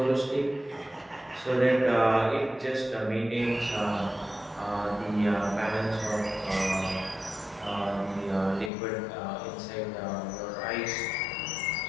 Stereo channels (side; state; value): right; drops out; at 8.7 s